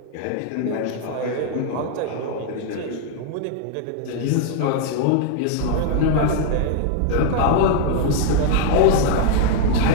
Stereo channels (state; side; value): different; both; correlation 0.00